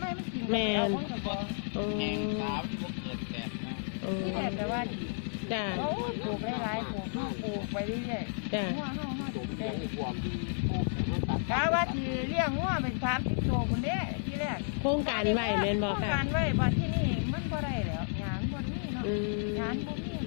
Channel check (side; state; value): right; silent; 56 dB below the other